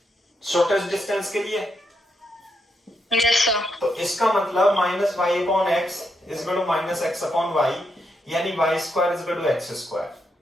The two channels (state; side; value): normal; both; correlation 0.81